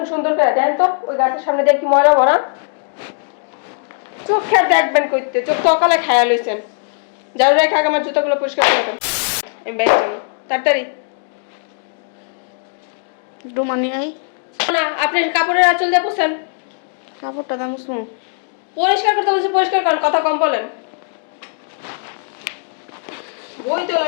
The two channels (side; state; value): right; silent; digital silence